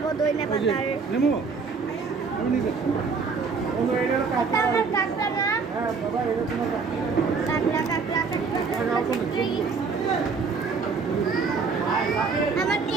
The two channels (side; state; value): left; quieter; 5.0 dB